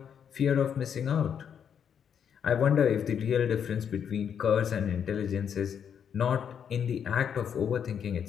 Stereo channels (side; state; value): right; quieter; 8.0 dB